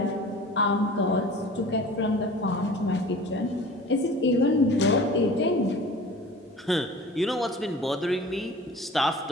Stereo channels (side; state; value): both; normal; correlation 0.42